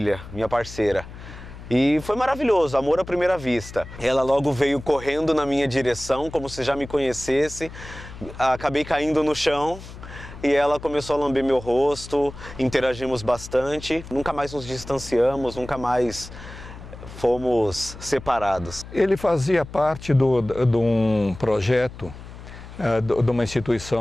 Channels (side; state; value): left; noise; hum, 15 dB below the sound